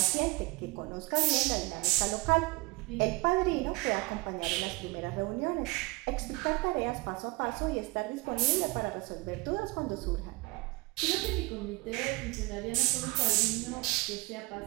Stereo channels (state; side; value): quieter; left; 23.9 dB